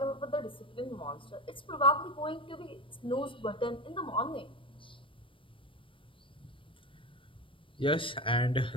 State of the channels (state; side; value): late; right; 0.25 ms